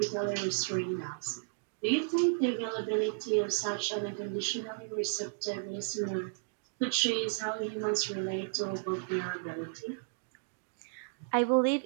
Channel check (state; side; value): silent; left; digital silence